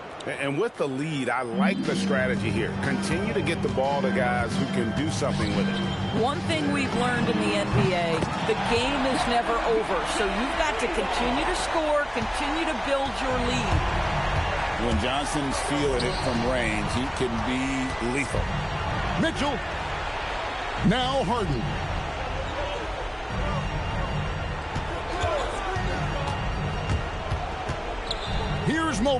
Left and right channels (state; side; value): identical; both; correlation 1.00